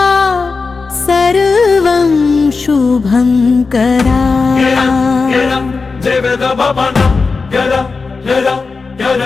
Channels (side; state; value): right; quieter; 4.4 dB